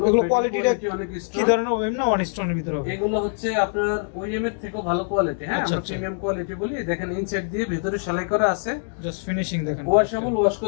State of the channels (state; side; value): silent; right; 63 dB below the other